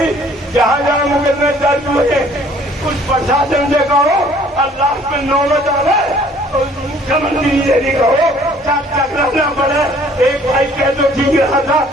जहां जहां मुकदमे दर्ज हुए कुछ प्रशासन से कहो, और लास्ट में नौबत आवे तो मुख्यमंत्री से भी कहो, टकराना पड़े। एक भाई कह तो ठीक रहा था,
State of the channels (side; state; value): both; normal; correlation 0.57